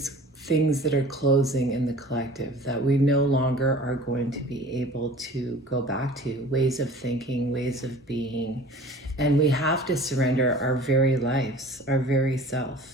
things that are closing in the collective that we no longer are going to be able to go back to, ways of thinking, ways of being, and we have to surrender our very lives, our very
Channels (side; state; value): both; normal; correlation 0.45